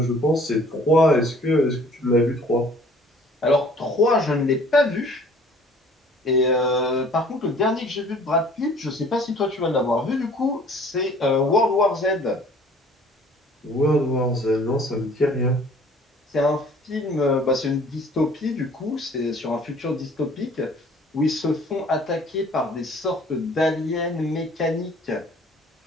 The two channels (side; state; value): both; normal; correlation 0.53